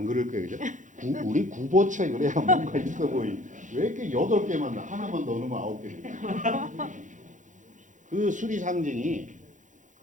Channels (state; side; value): late; left; 0.36 ms